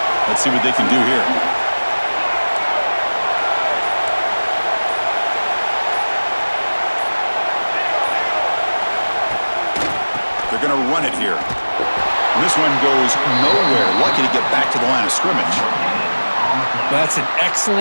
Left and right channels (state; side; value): inverted; both; correlation -1.00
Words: Let's see what they can do here. They're going to run it here. And this one goes nowhere. Lucky to get back to the line of scrimmage. That's an